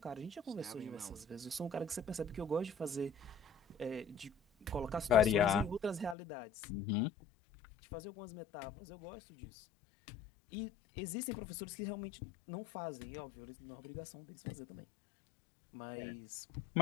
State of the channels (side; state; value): right; drops out; at 6.2 s